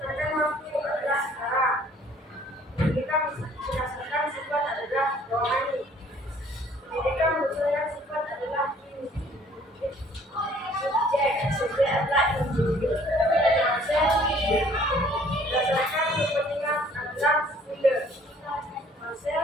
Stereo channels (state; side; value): normal; both; correlation 0.57